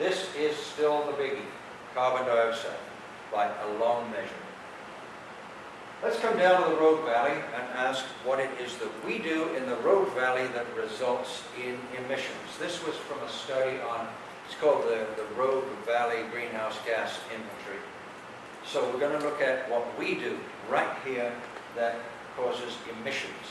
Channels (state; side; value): identical; both; correlation 1.00